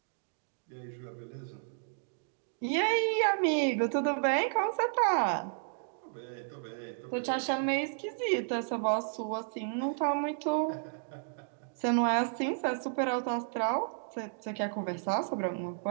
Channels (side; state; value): left; silent; digital silence